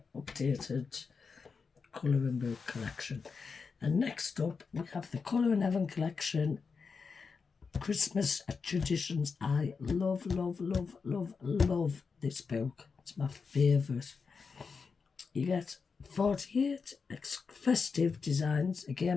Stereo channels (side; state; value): right; quieter; 5.2 dB